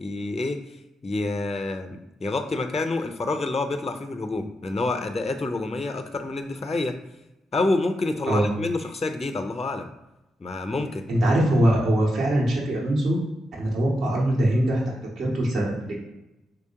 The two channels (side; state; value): both; normal; correlation 0.86